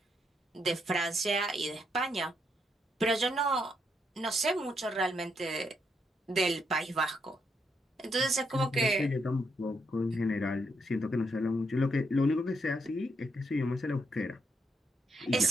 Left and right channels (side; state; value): both; normal; correlation 0.78